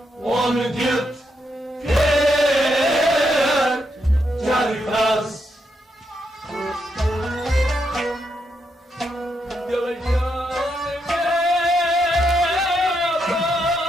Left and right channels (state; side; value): normal; both; correlation 0.80